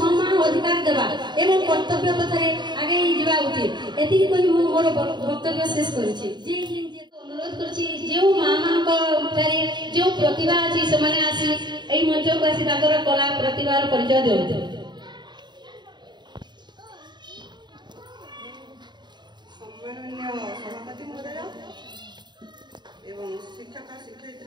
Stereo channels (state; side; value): late; left; 0.21 ms